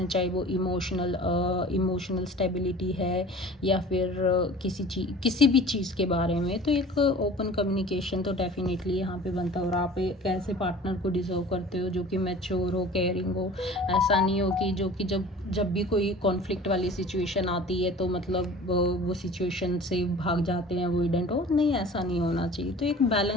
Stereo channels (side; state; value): both; normal; correlation 0.43